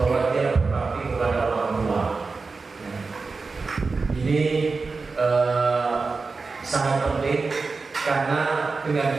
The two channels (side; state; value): left; quieter; 4.2 dB